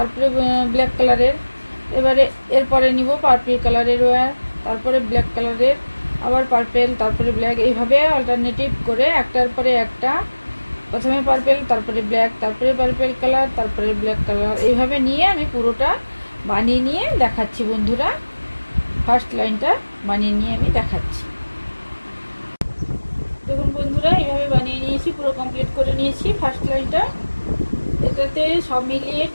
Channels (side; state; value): both; inverted; correlation -1.00